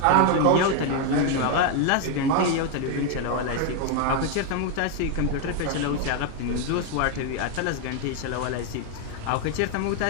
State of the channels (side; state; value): both; different; correlation 0.01